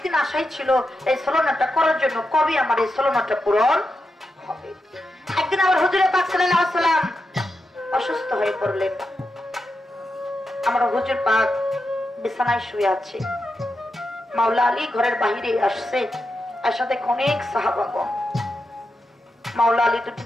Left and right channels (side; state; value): both; normal; correlation 0.87